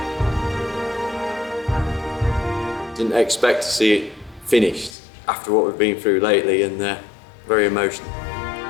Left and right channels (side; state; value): right; drops out; at 5.0 s